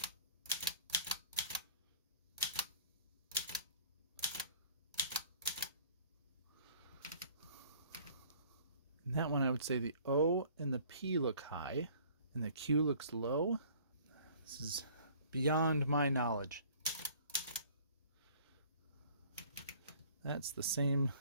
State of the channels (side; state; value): both; inverted; correlation -0.52